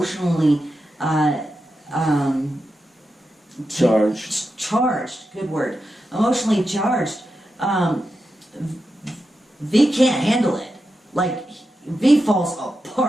charged, good word, emotionally charged, V can't handle it. Like, V falls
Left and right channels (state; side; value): normal; both; correlation 0.88